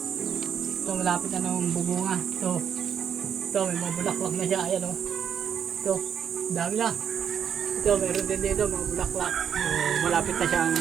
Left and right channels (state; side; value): quieter; left; 8.2 dB